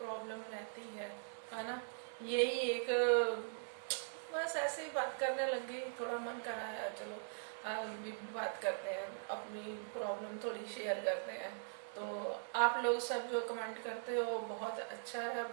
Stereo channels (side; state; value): left; silent; digital silence